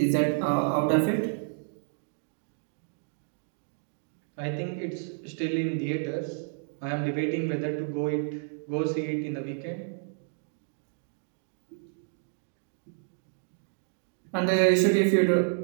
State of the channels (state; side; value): silent; left; digital silence